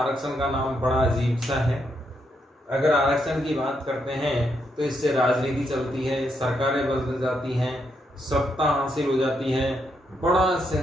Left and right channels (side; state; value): both; normal; correlation 0.79